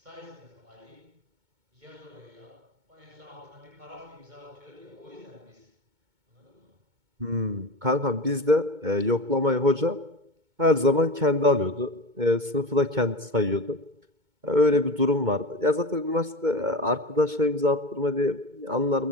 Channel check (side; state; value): left; late; 2.2 ms